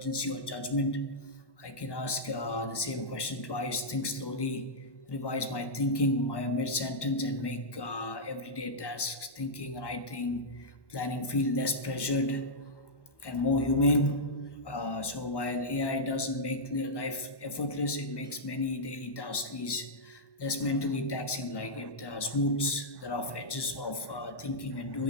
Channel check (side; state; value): right; late; 1.1 ms